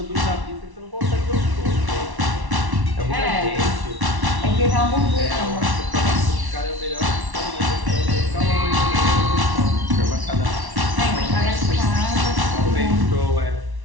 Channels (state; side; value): late; left; 1.1 ms